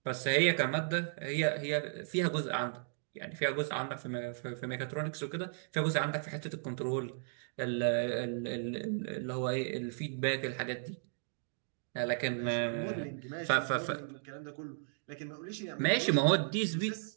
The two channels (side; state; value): left; silent; digital silence